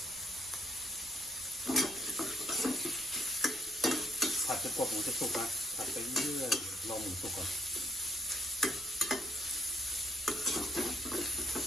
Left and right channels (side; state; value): right; noise; rumble, 23 dB below the sound